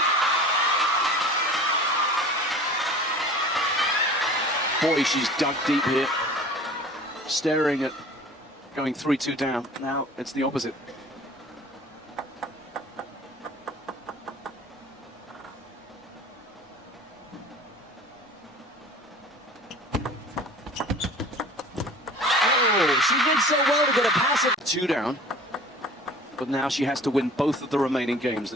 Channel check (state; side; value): normal; both; correlation 0.44